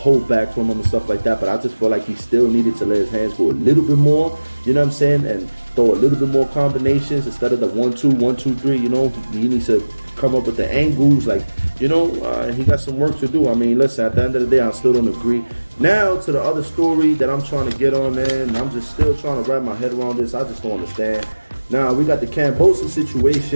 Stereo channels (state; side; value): inverted; both; correlation -1.00